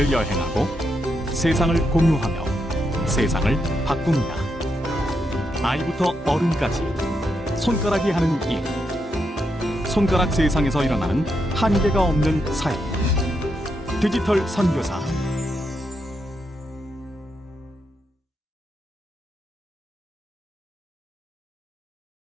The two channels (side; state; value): both; normal; correlation 0.82